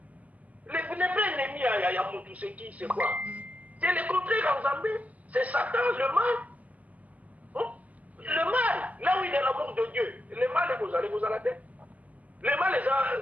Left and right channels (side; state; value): left; late; 0.076 ms